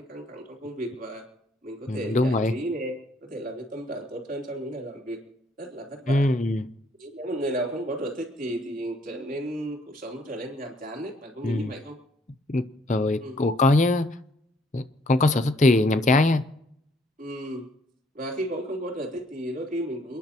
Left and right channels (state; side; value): normal; both; correlation 0.65